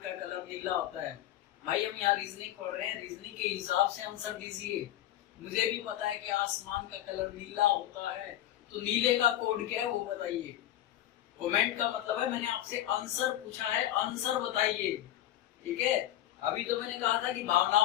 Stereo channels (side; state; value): right; quieter; 12.9 dB